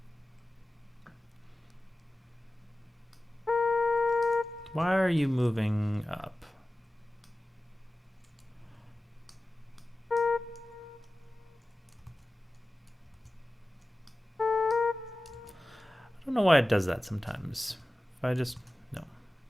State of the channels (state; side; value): normal; both; correlation 0.96